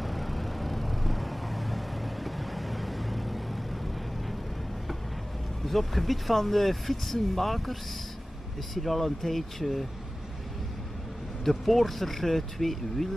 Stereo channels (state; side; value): normal; both; correlation 0.97